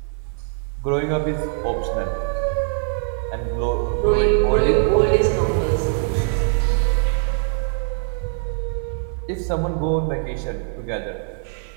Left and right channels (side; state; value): left; silent; 55 dB below the other